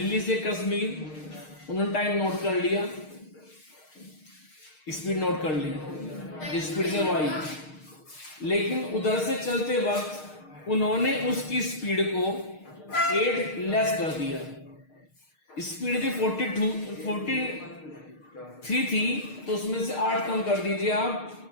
से कश्मीर, उन्होंने टाइम नोट कर लिया, स्पीड नोट कर ली जिस स्पीड से वो आई, लेकिन उधर से चलते वक्त उन्होंने उसकी स्पीड को 8 लेस कर दिया। स्पीड थी 43 थी, तो उसमें से 8 कम कर दीजिए आप,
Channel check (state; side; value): late; right; 6.5 ms